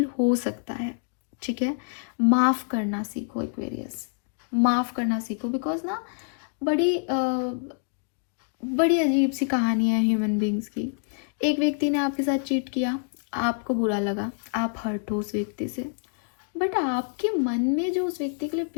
हो सकता है। ठीक है, माफ करना सीखो एक्वेरियस, माफ करना सीखो। बिकॉज ना बड़ी अजीब सी कहानी है ह्यूमन बींग्स की। एक व्यक्ति ने आपके साथ चीट किया, आपको बुरा लगा, आप हर्ट हो उस व्यक्ति से, बट आपके मन में जो उस व्यक्ति के लिए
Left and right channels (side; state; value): right; silent; 60 dB below the other